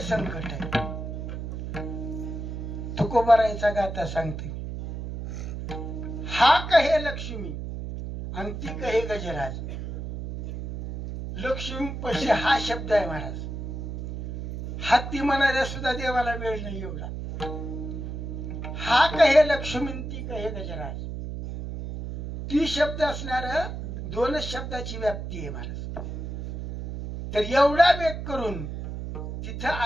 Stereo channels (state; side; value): noise; right; hum, 6 dB below the sound